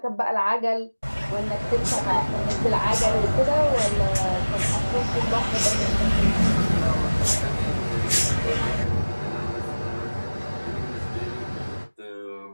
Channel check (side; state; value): both; inverted; correlation -1.00